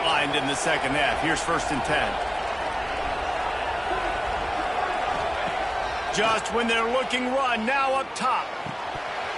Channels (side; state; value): both; identical; correlation 1.00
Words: in the second half. Here's 1st and 10. Just when they're looking run, now up top.